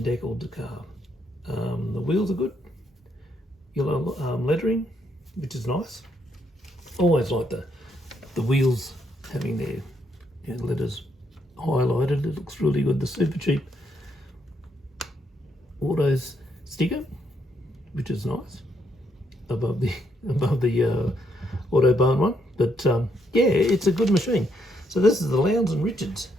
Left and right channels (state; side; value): normal; both; correlation 0.75